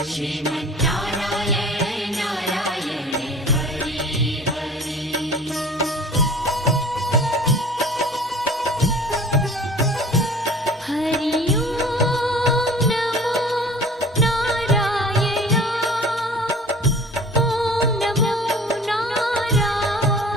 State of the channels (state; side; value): normal; both; correlation 0.45